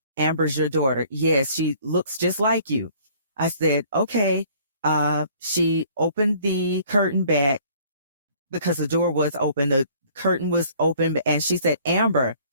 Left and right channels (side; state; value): both; inverted; correlation -0.55